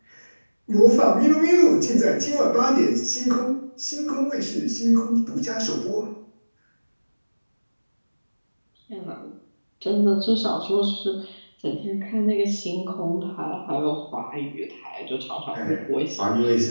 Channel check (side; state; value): both; inverted; correlation -1.00